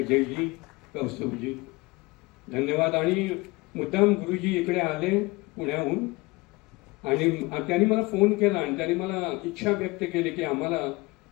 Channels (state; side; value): quieter; right; 23.7 dB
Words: कौस्तुभजी, धन्यवाद. आणि मुद्दाम गुरुजी इकडे आले पुण्याहून आणि त्यांनी मला फोन केला आणि त्यांनी मला इच्छा व्यक्त केली की आम्हाला